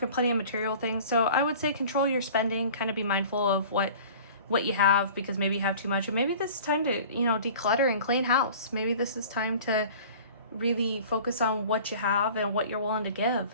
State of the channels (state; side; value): inverted; both; correlation -0.44